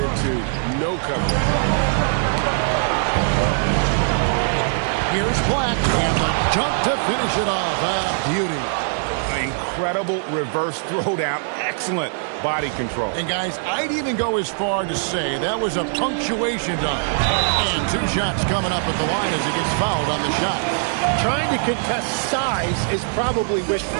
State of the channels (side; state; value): left; silent; 59 dB below the other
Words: no coverage. Here's Black, and the jump to finish it off. A beauty. Incredible reverse throwdown. Excellent body control. And guys, I'd even go as far to say that was a punctuation dunk. And 2 shots coming up at the line as he gets fouled on the shot. Trying to contest size is probably